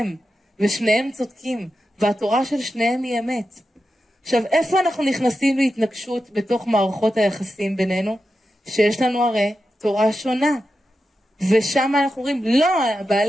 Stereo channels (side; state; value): both; normal; correlation 0.90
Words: ושניהם צודקים, והתורה של שניהם היא אמת. עכשיו, איפה אנחנו נכנסים להתנגשות בתוך מערכות היחסים בינינו? שיש לנו הרי תורה שונה. ושם אנחנו אומרים, לא,